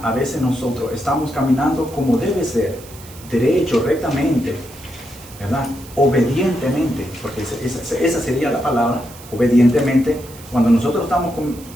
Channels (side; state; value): right; noise; hiss, 19 dB below the sound